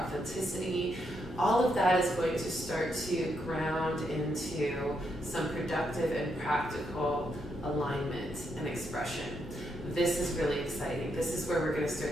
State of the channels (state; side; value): normal; both; correlation 0.79